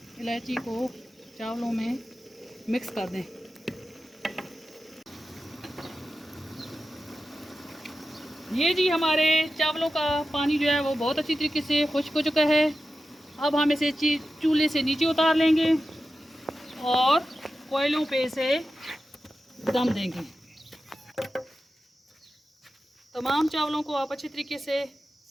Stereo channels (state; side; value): normal; both; correlation 0.92